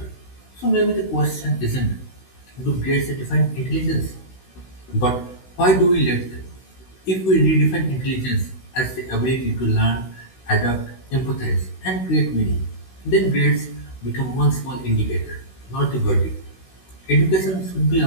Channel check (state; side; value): late; right; 16 ms